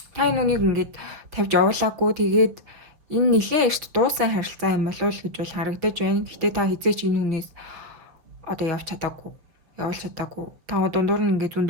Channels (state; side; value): late; left; 6.3 ms